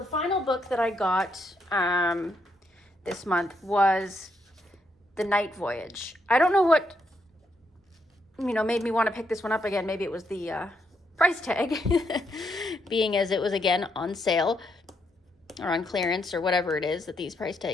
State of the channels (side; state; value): both; normal; correlation 0.77